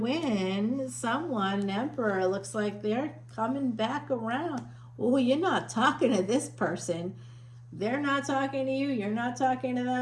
Someone, an Emperor. Looks like they're coming back around. Oh, you're not talking to this person. They're not talking to you. You're not talking to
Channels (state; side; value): identical; both; correlation 1.00